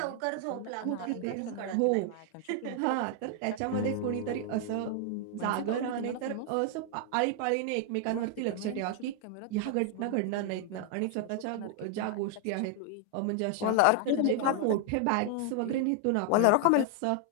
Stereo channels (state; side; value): different; both; correlation 0.00